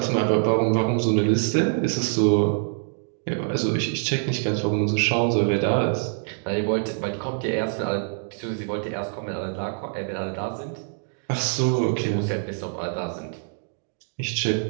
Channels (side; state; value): left; silent; digital silence